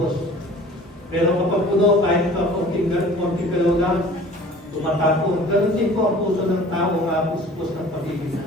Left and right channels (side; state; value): both; normal; correlation 0.46